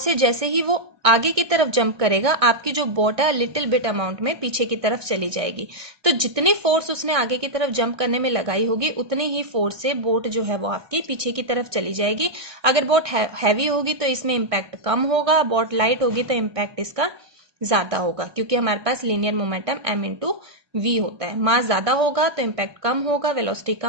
जैसे ही वो आगे की तरफ जंप करेगा, आपकी जो बोट है लिटिल बिट अमाउंट में पीछे की तरफ चली जाएगी। तो जितनी फोर्स उसने आगे की तरफ जंप करने में लगाई होगी, उतनी ही फोर्स से बोट जो है वो आपकी पीछे की तरफ चली जाएगी। अगर बोट हैवी होगी तो इसमें इम्पैक्ट कम होगा, बोट लाइट होगी तो इम्पैक्ट इसका ज्यादा होगा, क्योंकि हमारे पास linear momentum m into v होता है। मास ज्यादा होगा तो इम्पैक्ट कम होगा, वेलोसिटी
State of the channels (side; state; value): left; late; 1.6 ms